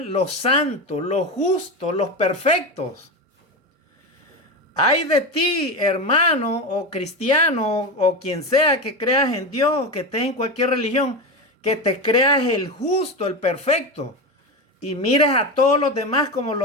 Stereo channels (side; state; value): both; normal; correlation 0.19